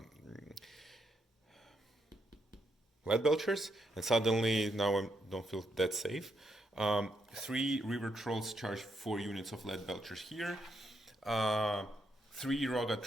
lead belchers, and suddenly now I don't feel that safe. 3 river trolls charge 4 units of lead belchers here. 3 Roga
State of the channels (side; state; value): both; normal; correlation 0.79